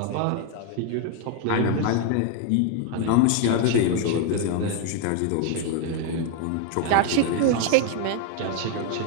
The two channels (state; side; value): different; both; correlation 0.01